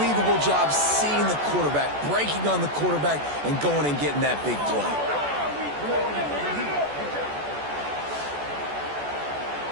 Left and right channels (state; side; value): late; left; 14 ms